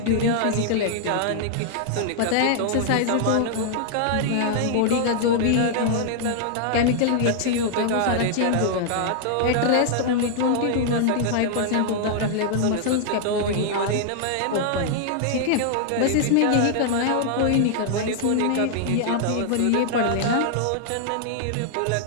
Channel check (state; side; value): different; both; correlation -0.01